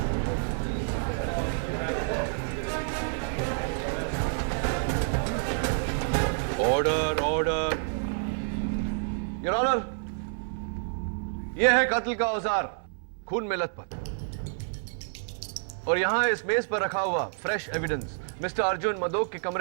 Order, order. योर ऑनर, यह है कत्ल का औजार, खून में लथपथ। और यहां इस मेज पर रखा हुआ fresh evidence mister Arjun Madok के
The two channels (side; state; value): left; silent; 59 dB below the other